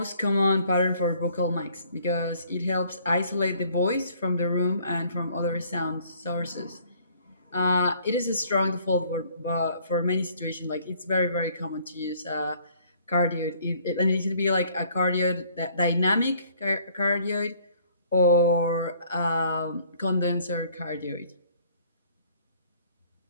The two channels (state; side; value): inverted; both; correlation -0.59